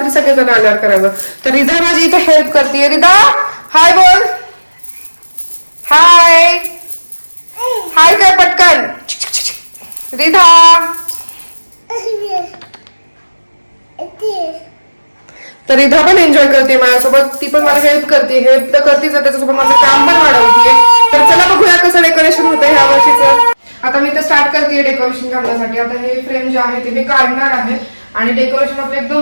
सगळेजण आल्यावर करावं. तर रिधा माझी इथे हेल्प करते. रिधा हाय बोल. हाय हाय काय पटकन रिधा. तर रिधा पण एन्जॉय करते माझ्यासोबत, ती पण मला हेल्प करते. हेल्प तर करतेच, त्याच्यासोबत माझं काम पण वाढवते. तर चला बघूया कसं डेकोरेशन होतं ह्या वर्षीचं. आता मी तर स्टार्ट करते डेकोरेशन करण्यासाठी. आता हे फ्रेम जे आहे ते मी काढणार आहे आणि डेकोरेशन आपलं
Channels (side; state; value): both; inverted; correlation -1.00